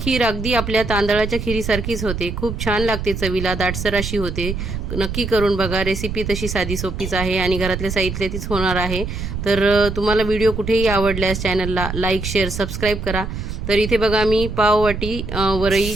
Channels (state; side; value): noise; right; rumble, 5 dB below the sound